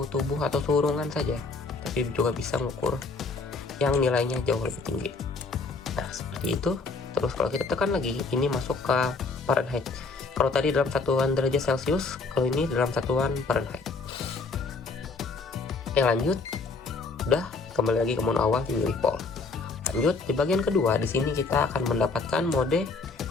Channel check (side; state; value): right; quieter; 4.0 dB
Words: tubuh atau suhu ruangan saja, tapi juga bisa mengukur yang nilainya jauh lebih tinggi. Nah, seperti itu. Terus kalau kita tekan lagi, ini masuk ke Fahrenheit. Kalau tadi dalam satuan derajat Celcius, kalau ini dalam satuan Fahrenheit. Yang lanjut, udah kembali lagi ke mode awal di milivolt. Lanjut, di bagian kedua, di sini kita akan mendapatkan mode